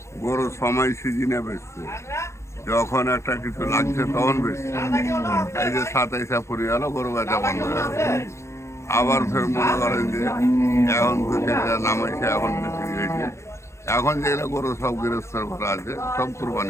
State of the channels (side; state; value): right; late; 0.13 ms